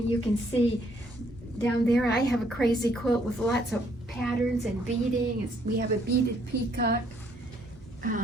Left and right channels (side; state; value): both; normal; correlation 0.68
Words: can see down there, I have a crazy quilt with lots of patterns and beading. We have a beaded peacock.